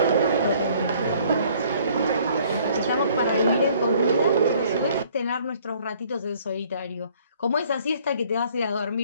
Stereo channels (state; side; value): inverted; both; correlation -0.59